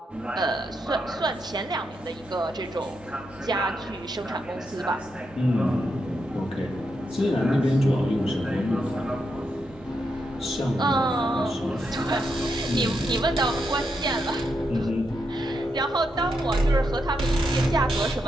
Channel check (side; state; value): both; normal; correlation 0.83